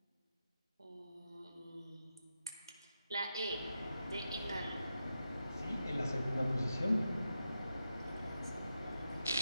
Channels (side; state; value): both; inverted; correlation -0.88